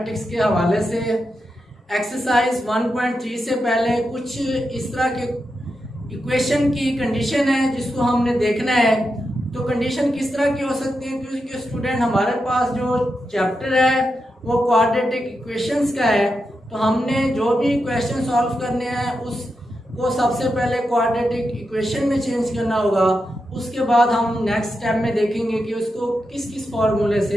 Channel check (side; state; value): both; normal; correlation 0.87